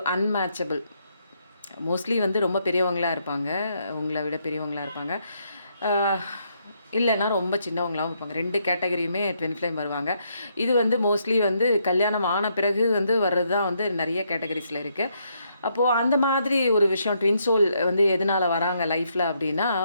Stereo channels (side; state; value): both; inverted; correlation -0.75